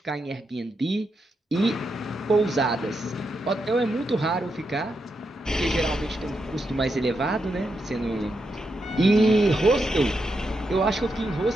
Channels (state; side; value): normal; both; correlation 0.84